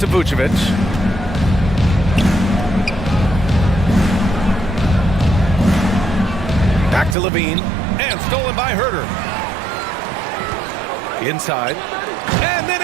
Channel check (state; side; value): drops out; left; at 7.2 s